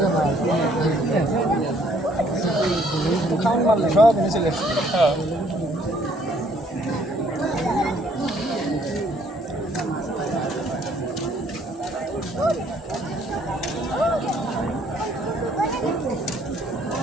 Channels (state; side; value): normal; both; correlation 0.63